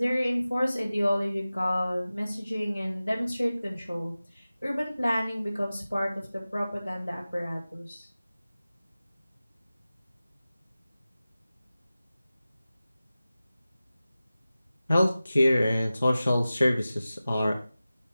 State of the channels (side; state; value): both; inverted; correlation -0.96